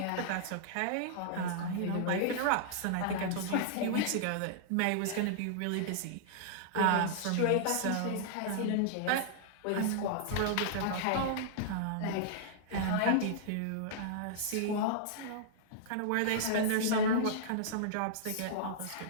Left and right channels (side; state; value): both; different; correlation -0.01